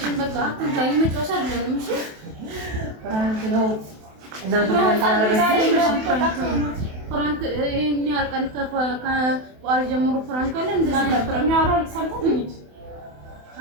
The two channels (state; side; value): late; left; 28 ms